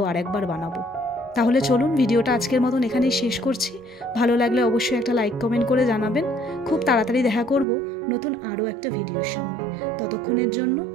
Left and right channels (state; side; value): drops out; left; at 7.7 s